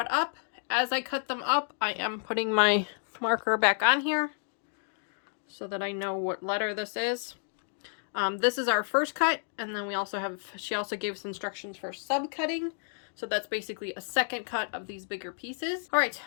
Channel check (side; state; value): right; silent; digital silence